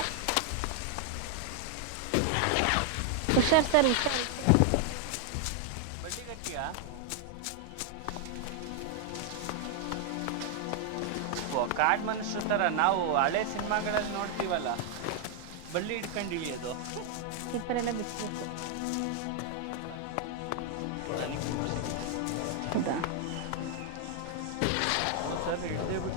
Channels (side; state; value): both; different; correlation 0.00